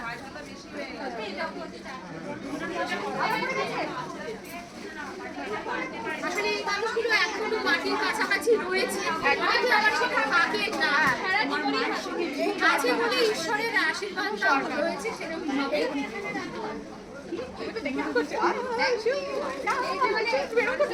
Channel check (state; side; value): identical; both; correlation 1.00